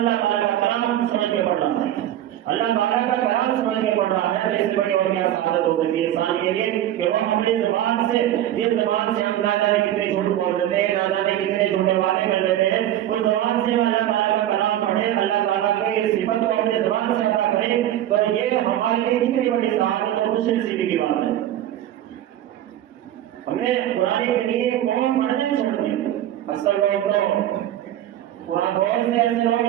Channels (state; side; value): quieter; left; 12.3 dB